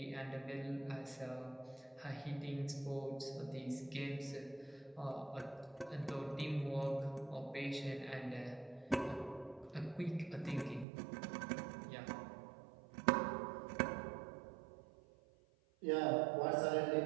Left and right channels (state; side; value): drops out; left; at 10.9 s